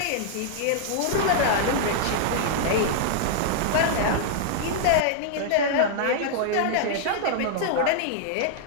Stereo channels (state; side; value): different; both; correlation -0.01